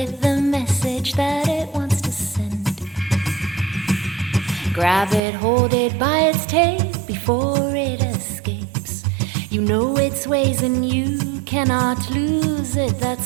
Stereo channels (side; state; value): left; drops out; at 5.2 s